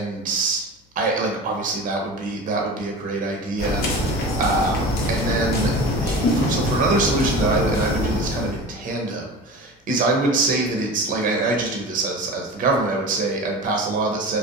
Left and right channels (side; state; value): both; normal; correlation 0.33